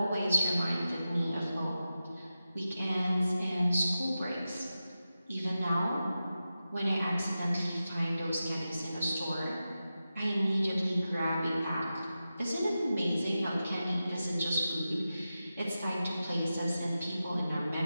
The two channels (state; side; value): inverted; both; correlation -0.92